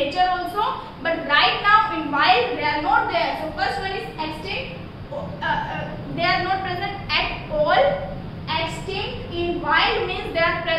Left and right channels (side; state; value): both; identical; correlation 1.00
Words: also, but right now in wild they are not there. So first one is extinct. They are not present at all. Extinct in wild means they are